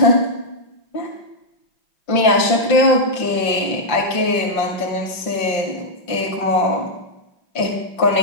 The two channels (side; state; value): right; late; 5.7 ms